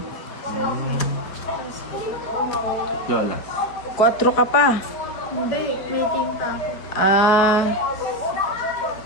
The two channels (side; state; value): right; late; 4.7 ms